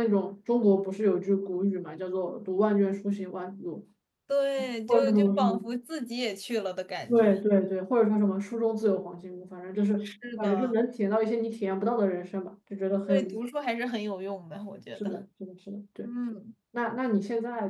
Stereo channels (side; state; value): both; identical; correlation 1.00